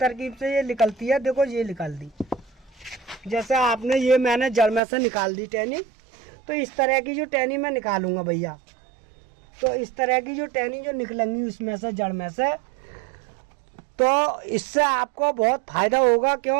से ये निकलती है। देखो ये निकल दी, जैसे आपने ये मैंने जड़ में से निकाल दी टहनी, तो इस तरह की जो टहनी मैं निकालूंगा भैया। तो इस तरह की जो टहनी जो निकलेंगी उसमें से जड़ में से, तो इससे आपको बहुत फायदा होगा।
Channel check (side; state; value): left; drops out; at 4.8 s